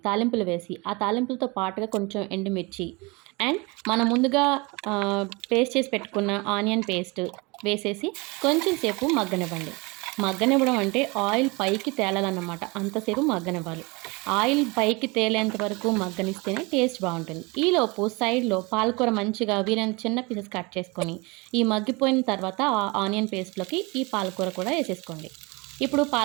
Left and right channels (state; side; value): quieter; left; 26.6 dB